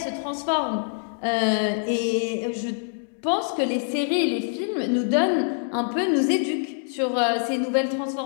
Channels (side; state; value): right; silent; digital silence